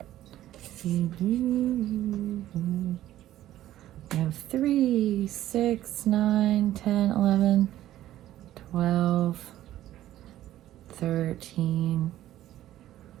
We have 3, 6, 9, 10, 11, 12, 13,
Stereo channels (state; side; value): quieter; left; 13.5 dB